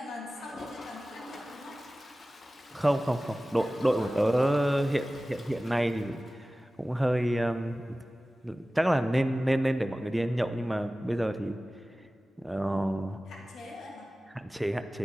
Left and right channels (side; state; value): both; normal; correlation 0.97